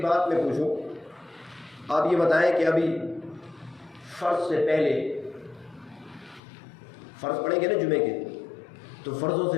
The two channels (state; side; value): drops out; right; at 6.4 s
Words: بات میں پوچھوں، آپ یہ بتائیں کہ ابھی فرض سے پہلے، فرض پڑھیں گے نا جمعے کے، تو فرضوں